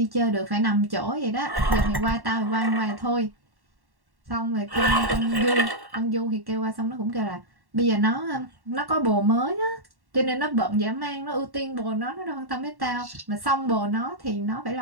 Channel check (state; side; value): late; left; 1.1 ms